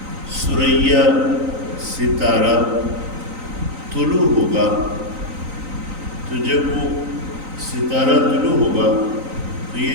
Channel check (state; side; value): late; left; 3.9 ms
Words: ثریا ستارہ طلوع ہوگا۔ تو جب وہ ستارہ طلوع ہوگا تو یہ